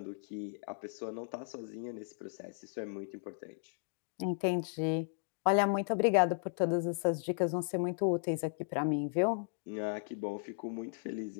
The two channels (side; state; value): right; silent; digital silence